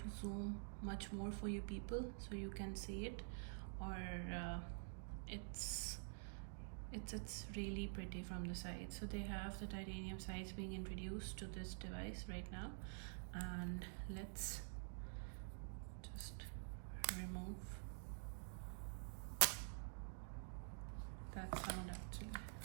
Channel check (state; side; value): silent; left; digital silence